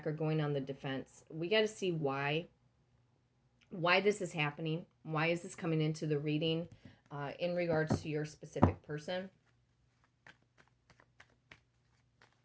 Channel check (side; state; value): both; identical; correlation 1.00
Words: or going on the defense. We got to see why this is happening. Why is this coming into the reading in regards to your specific person?